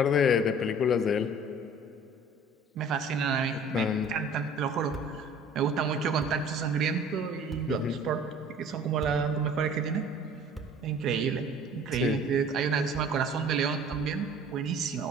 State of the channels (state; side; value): normal; both; correlation 0.48